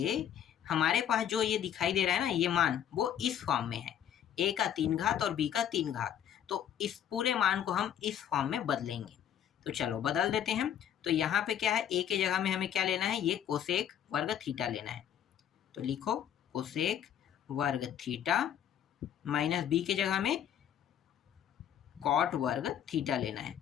हमारे पास जो ये दिखाई दे रहा है ना, ये मान वो इस फॉर्म में है, a का 3 घात और b का 3 घात। तो इस पूरे मान को हम इस फॉर्म में बदलेंगे। तो चलो बदल देते हैं। तो यहाँ पे क्या है, a के जगह में हमें क्या लेना है, ये कोसेक वर्ग थीटा लेना है। तो लिखो कोसेक वर्ग थीटा माइनस b के जगह में कॉट वर्ग थीटा लेना है।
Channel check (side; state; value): right; quieter; 9.7 dB